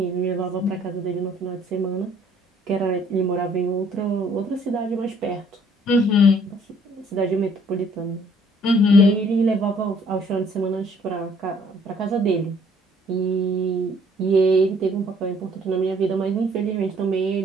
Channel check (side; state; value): both; normal; correlation 0.60